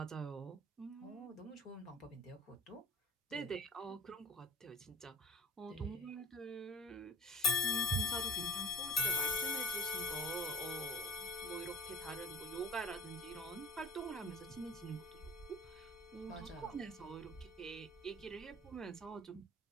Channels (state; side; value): normal; both; correlation 0.35